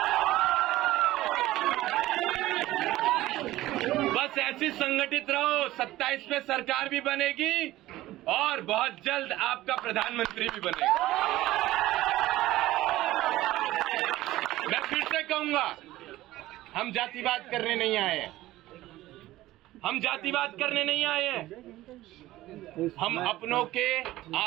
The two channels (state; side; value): quieter; left; 16.3 dB